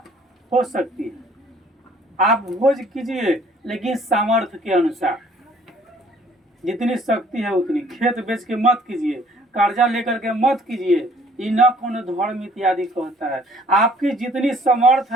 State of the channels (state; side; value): normal; both; correlation 0.58